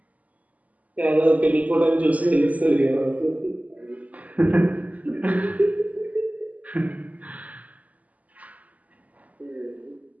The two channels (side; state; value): left; late; 0.074 ms